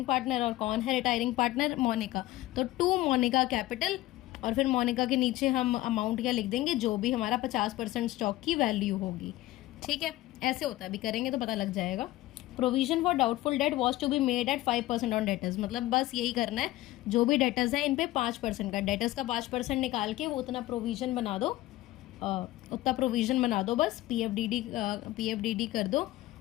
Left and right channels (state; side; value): quieter; right; 17.0 dB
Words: पार्टनर, और कौन है रिटायरिंग पार्टनर, मोनिका। तो टू मोनिका कैपिटल, और फिर मोनिका के नीचे हम अमाउंट क्या लिख देंगे, जो भी हमारा 50% स्टॉक की वैल्यू होगी, ठीक है। ऐसे होता है, अभी करेंगे तो पता लग जाएगा। Provision for doubtful debt was to be made at 5% on debtors, मतलब बस यही करना है, जो भी डेटर्स है इन पे 5% का, डेटर्स का 5% निकाल के वो उतना प्रोविजन बना दो, उतना प्रोविजन बना दो, बस पीएफडीडी कर दो,